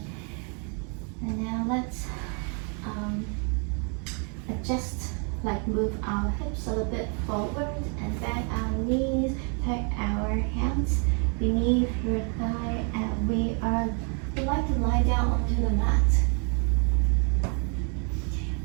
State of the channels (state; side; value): quieter; left; 38.5 dB